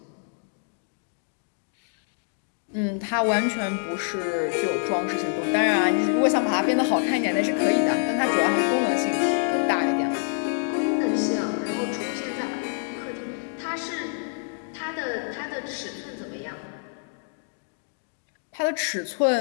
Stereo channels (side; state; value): right; silent; 61 dB below the other